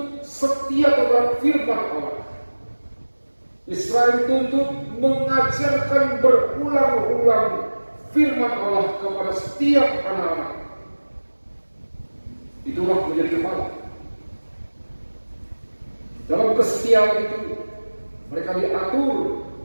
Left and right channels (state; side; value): inverted; both; correlation -1.00